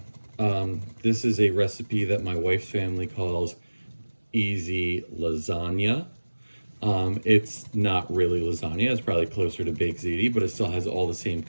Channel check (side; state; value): both; inverted; correlation -1.00